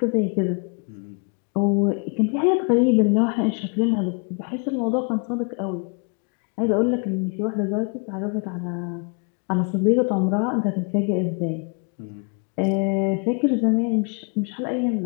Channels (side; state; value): right; quieter; 37.3 dB